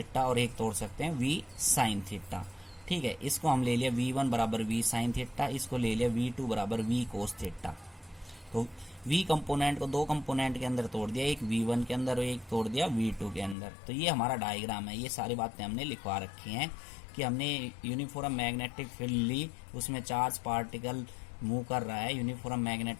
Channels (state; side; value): drops out; right; at 13.6 s